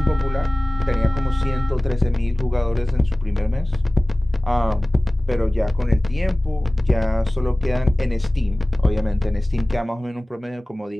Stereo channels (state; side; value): normal; both; correlation 0.98